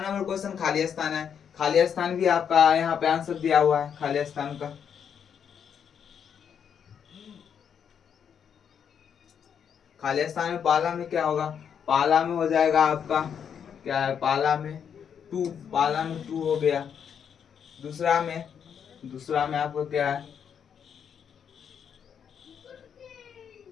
क्वेश्चन खाली स्थान है। खाली स्थान भी आपका यहाँ पे आंसर दिया हुआ है खाली स्थान का। खाली स्थान में पाला में क्या होगा? पाला में हो जाएगा आपका क्या है, पाला में 2, पाला में 2 हो गया। दूसरा में आपको क्या है?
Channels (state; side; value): quieter; right; 7.8 dB